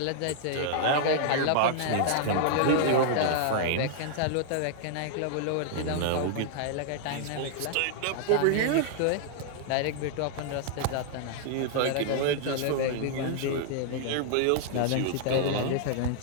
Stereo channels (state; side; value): different; both; correlation -0.01